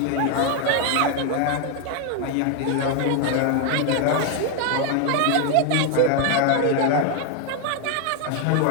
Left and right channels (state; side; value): different; both; correlation 0.01